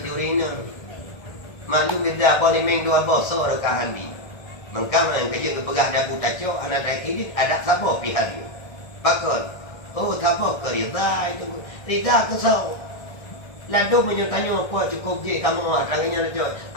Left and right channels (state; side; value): late; right; 1.3 ms